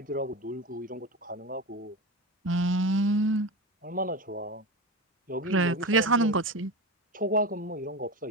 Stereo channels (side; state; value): both; normal; correlation 0.23